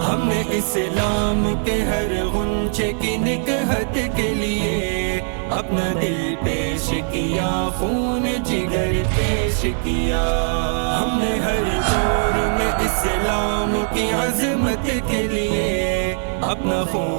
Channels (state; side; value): silent; left; digital silence